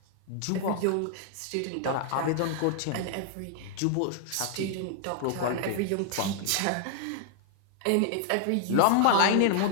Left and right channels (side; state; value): both; different; correlation -0.01